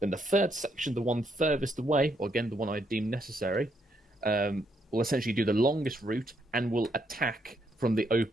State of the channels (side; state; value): both; normal; correlation 0.75